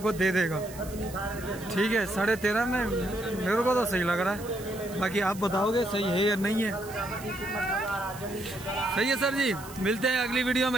दे देगा। ठीक है, 13.5 में मेरे को तो सही लग रहा है, बाकी आप बताओगे सही है या नहीं है। सही है सर जी, मिलते हैं अगली वीडियो में,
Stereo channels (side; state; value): right; noise; hiss, 17 dB below the sound